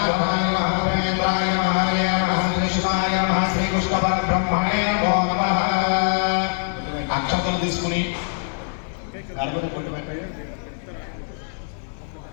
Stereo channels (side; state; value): right; silent; digital silence